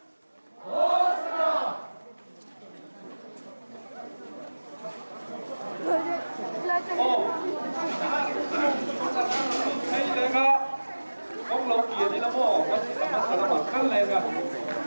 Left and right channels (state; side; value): inverted; both; correlation -1.00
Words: Hosanna hay lên á ông lâu kia đi lắm ô có gì mà khăn lên à